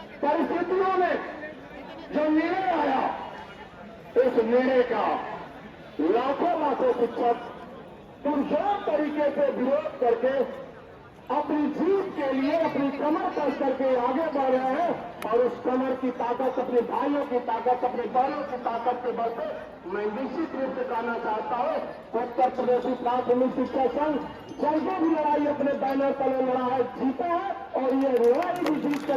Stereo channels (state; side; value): identical; both; correlation 1.00